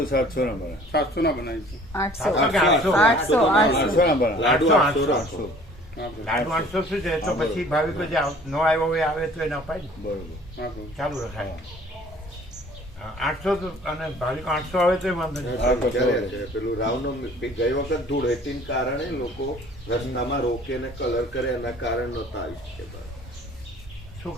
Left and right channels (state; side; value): normal; both; correlation 0.51